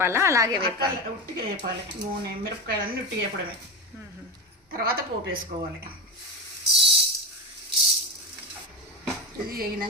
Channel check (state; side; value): normal; both; correlation 0.18